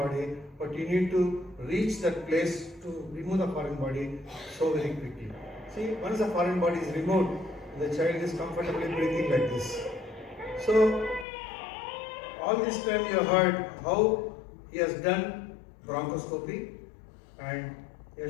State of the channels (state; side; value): drops out; right; at 11.2 s